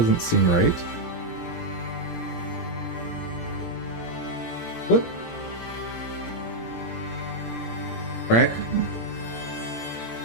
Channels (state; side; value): late; right; 17 ms